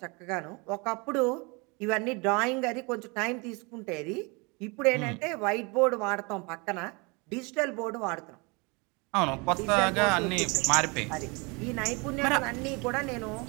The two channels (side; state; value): left; quieter; 29.2 dB